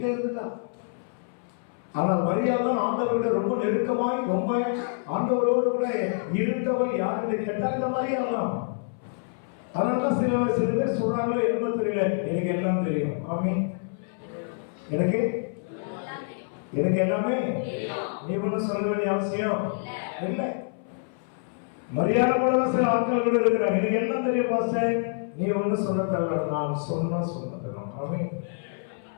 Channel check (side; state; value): right; silent; 60 dB below the other